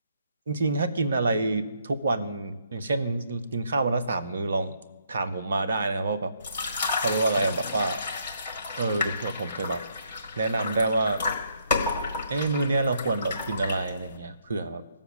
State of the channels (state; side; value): inverted; both; correlation -0.72